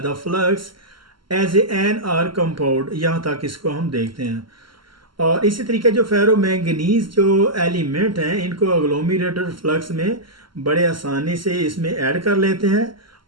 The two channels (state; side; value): late; left; 0.73 ms